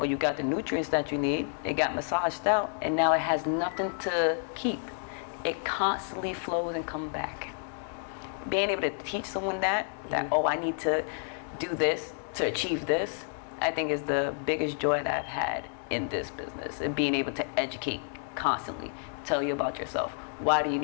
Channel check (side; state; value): right; silent; 58 dB below the other